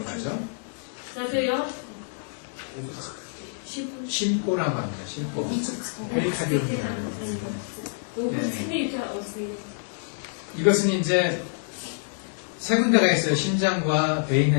가죠. За тийм яа. 심포라고 합니다. 심포. 페리카디움. Өөрсний үеийн 이것은 이제 세 군데가 있어요. 심장과 배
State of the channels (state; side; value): silent; right; digital silence